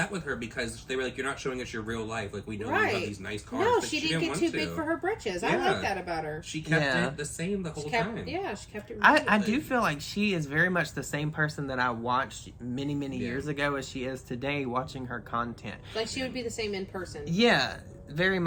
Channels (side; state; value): both; identical; correlation 1.00